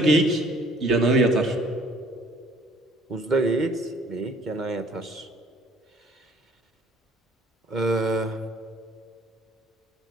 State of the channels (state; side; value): normal; both; correlation 0.57